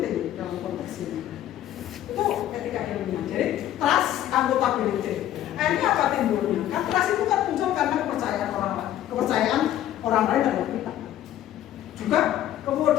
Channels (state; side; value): quieter; right; 12.3 dB